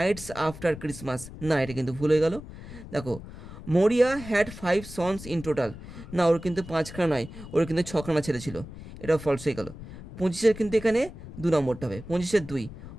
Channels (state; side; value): noise; left; rumble, 14 dB below the sound